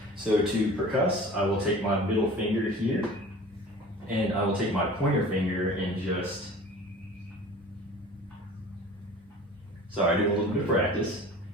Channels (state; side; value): normal; both; correlation 0.42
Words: So to percuss, I will take my middle finger here, and I will take my pointer finger and just, sorry, do a little bit of practice.